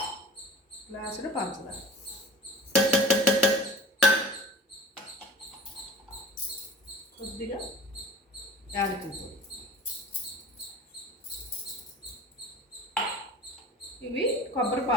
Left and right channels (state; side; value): normal; both; correlation 0.40